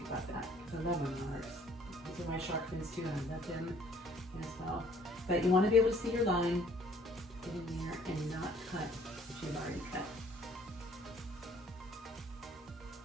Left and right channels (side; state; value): both; normal; correlation 0.59